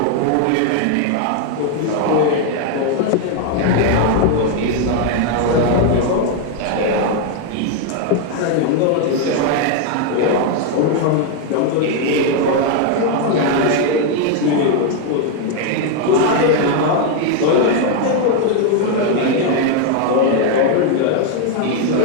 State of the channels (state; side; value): different; both; correlation 0.01